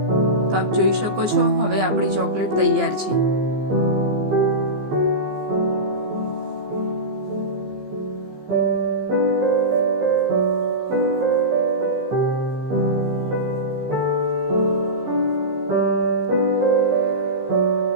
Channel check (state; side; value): late; left; 15 ms